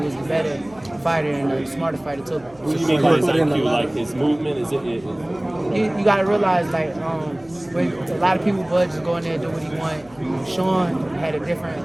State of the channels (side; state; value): left; noise; hum, 25 dB below the sound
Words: the better fighter and the smarter fighter too. What do you mean by his IQ? Like his movement? Is it? You gotta realize, like, when a lot of people, Bud just go in there and do what he want. Sean had a